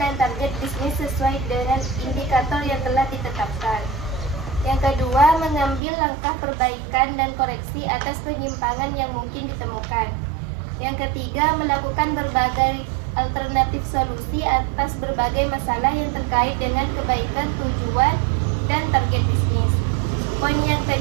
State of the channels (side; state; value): left; drops out; at 5.8 s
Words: target bisnis sesuai dengan indikator yang telah ditetapkan. Yang kedua, mengambil langkah perbaikan dan koreksi atas penyimpangan yang mungkin ditemukan. Yang ketiga, melakukan berbagai alternatif solusi atas berbagai masalah yang terkait dengan kebaikan tujuan dan target bisnis. Poin yang